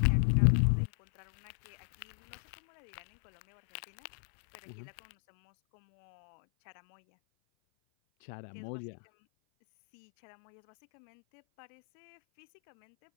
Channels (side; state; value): right; silent; 56 dB below the other